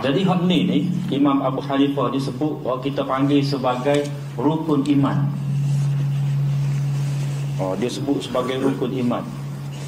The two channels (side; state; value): both; identical; correlation 1.00